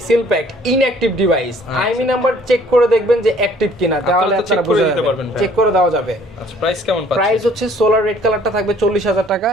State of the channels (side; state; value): both; normal; correlation 0.57